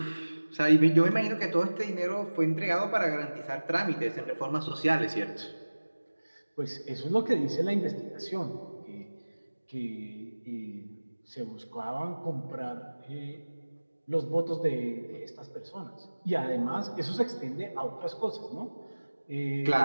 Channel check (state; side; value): inverted; both; correlation -1.00